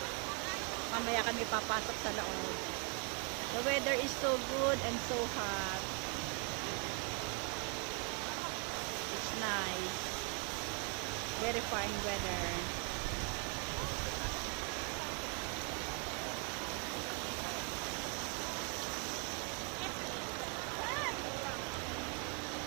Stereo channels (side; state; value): left; quieter; 37.1 dB